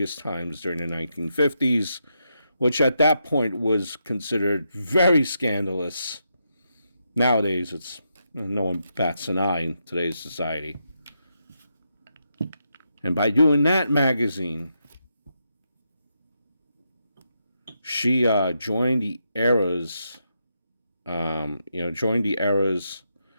times during the 1950s, which at that point was considered very scandalous. Nowadays, it's no one bats an eye in today's society. And by doing that magazine, she joined the era's, kind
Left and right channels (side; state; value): both; inverted; correlation -0.83